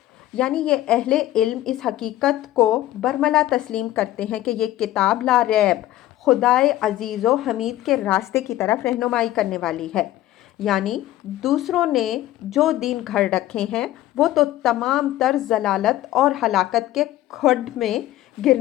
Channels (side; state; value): right; quieter; 14.4 dB